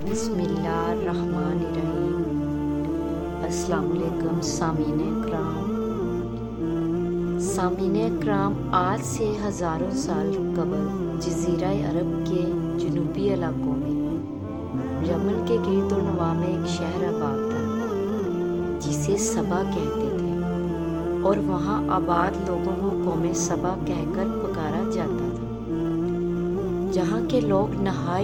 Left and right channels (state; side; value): identical; both; correlation 1.00